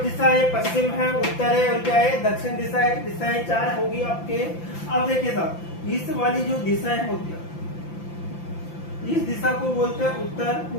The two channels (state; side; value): late; right; 5.9 ms